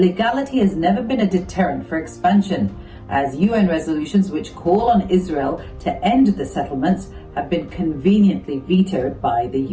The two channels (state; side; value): identical; both; correlation 1.00